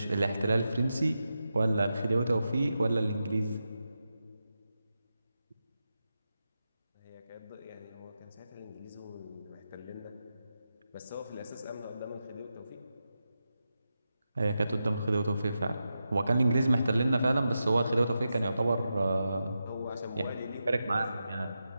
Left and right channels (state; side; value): inverted; both; correlation -0.89